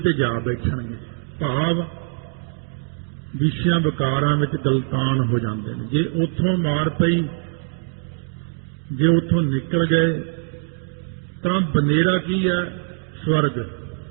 ਜਾ ਬੈਠਣਗੇ। ਭਾਵ ਵਿਸ਼ਿਆਂ ਵਿਕਾਰਾਂ ਵਿੱਚ ਗਲਤਾਨ ਹੋ ਜਾਂਦੇ ਨੇ। ਜੇ ਉੱਥੋਂ ਮਾਰ ਪਈ, ਜੇ ਉੱਥੋਂ ਨਿਕਲ ਗਏ ਤਾਂ ਬਨੇਰਾ ਕੀ ਹੈ? ਸਵਰਗ।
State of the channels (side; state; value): left; silent; digital silence